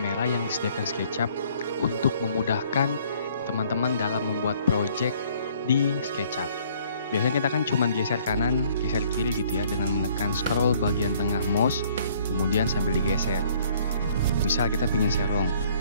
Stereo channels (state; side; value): inverted; both; correlation -0.60